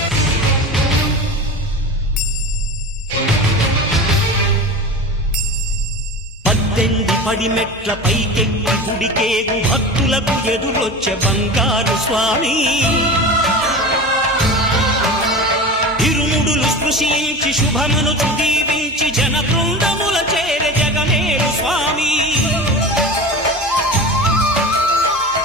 పడిమెట్ల పైకెక్కి గుడికేగు భక్తులకు ఎదురొచ్చే బంగారు స్వామి. ఇరుముడులు స్పృశించి శుభమనుచు దీవించి జన బృందముల చేరే జగమేరు స్వామి.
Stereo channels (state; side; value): normal; both; correlation 0.31